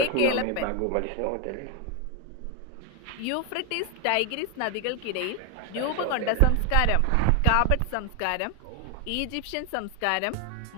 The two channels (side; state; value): both; different; correlation 0.01